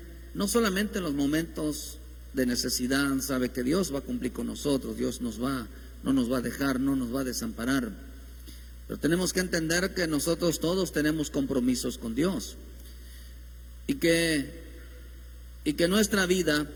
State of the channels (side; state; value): both; identical; correlation 1.00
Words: no solamente en los momentos de necesidad. Sabe que Dios va a cumplir con nosotros, Dios no nos va a dejar, no nos va a desamparar. Pero tenemos que entender que nosotros todos tenemos compromisos con Dios y que nuestra vida